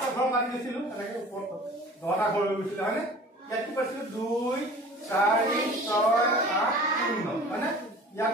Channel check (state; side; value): normal; both; correlation 0.43